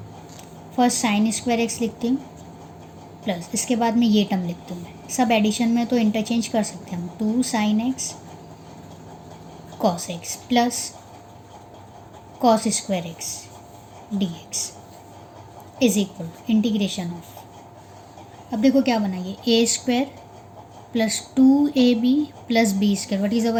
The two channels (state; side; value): identical; both; correlation 1.00